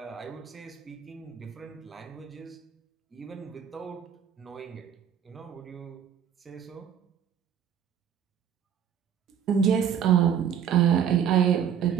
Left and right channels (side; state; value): left; quieter; 8.6 dB